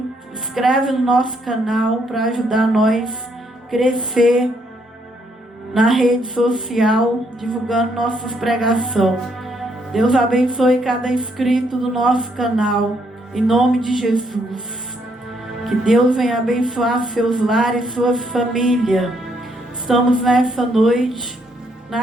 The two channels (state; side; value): normal; both; correlation 0.73